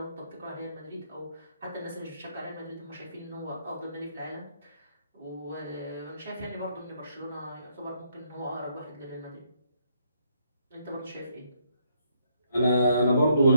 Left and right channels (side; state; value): both; inverted; correlation -0.72